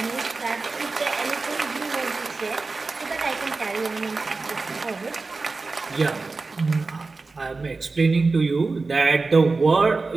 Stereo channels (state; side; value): quieter; left; 3.8 dB